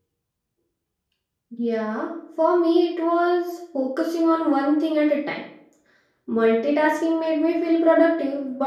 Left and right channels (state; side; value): identical; both; correlation 1.00